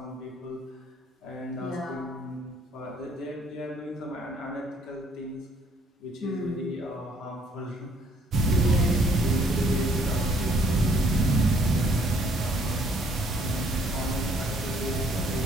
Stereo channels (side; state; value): both; normal; correlation 0.63